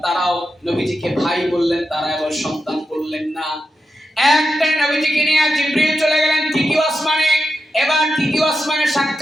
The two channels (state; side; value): normal; both; correlation 0.88